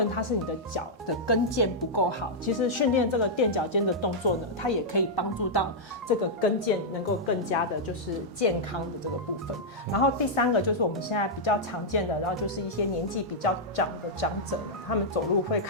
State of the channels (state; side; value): normal; both; correlation -0.07